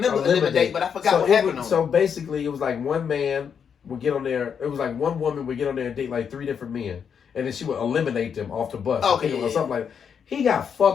Eliminate, but I forgot what happened on it. So basically, it was like one man would get on there. It was like one woman would get on there and date like 3 different men. And then she would eliminate them off the bus. Or something like that. He got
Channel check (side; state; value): right; quieter; 7.2 dB